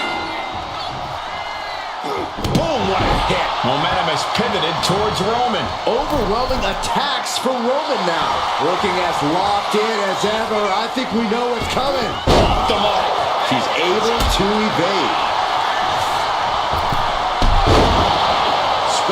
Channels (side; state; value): both; identical; correlation 1.00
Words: Boom, what a hit. Momentum has pivoted towards Roman. Overwhelming attacks from Roman now. Looking as locked in as ever. I think we know what's coming. Off the mark. She's able to evade.